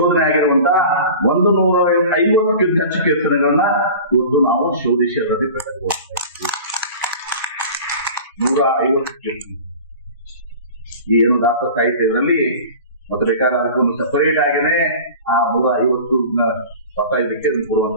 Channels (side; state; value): both; inverted; correlation -0.38